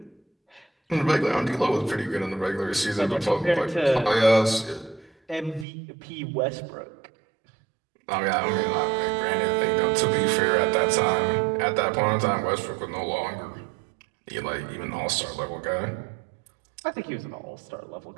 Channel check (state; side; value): drops out; left; at 5.7 s